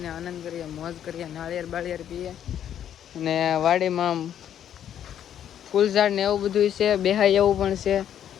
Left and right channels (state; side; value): quieter; right; 10.0 dB